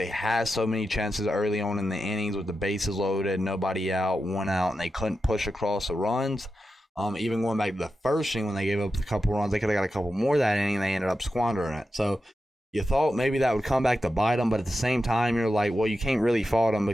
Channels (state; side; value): normal; both; correlation 0.90